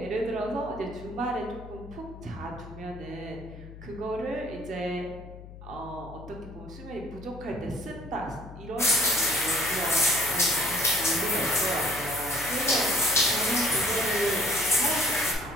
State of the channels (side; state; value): left; noise; hum, 15 dB below the sound